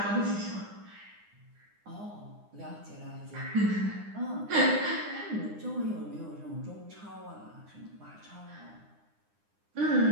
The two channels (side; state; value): left; late; 9.8 ms